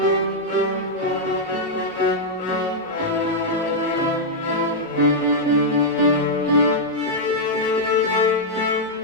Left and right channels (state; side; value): normal; both; correlation -0.06